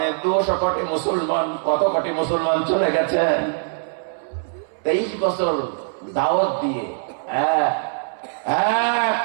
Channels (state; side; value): silent; left; 62 dB below the other